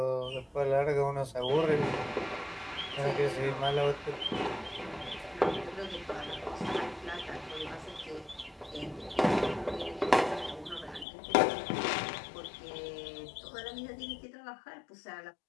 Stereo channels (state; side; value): drops out; right; at 11.1 s